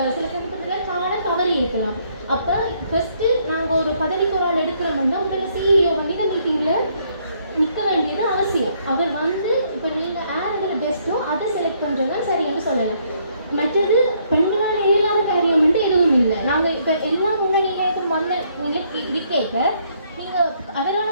சமயத்தில் காண தவறி இருக்கலாம். அப்போ ஃபஸ்ட்டு நாங்கள் ஒரு பதவிக்கு ஒரு ஆள் எடுக்கிறோம்னா உங்களை சிஇஓ பண்ணிட்டு மீட்டிங்கில் நிற்க வேண்டியது அவசியம். அவர் வந்து இப்போ நீங்கள் யார் இதில் பெஸ்ட்டோ அதை செலக்ட் பண்ணுறது தான் சரின்னு சொல்லலாம். மற்றது பெண்களால் இயலாத காரியம் வந்து எதுவும் இல்லை. நாங்கள் இப்போ எல்லா முன்னணியிலும் வந்த இது கேட்க நீங்கள்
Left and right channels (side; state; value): both; inverted; correlation -0.69